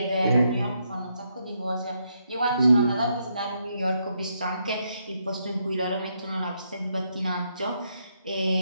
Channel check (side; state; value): both; inverted; correlation -0.78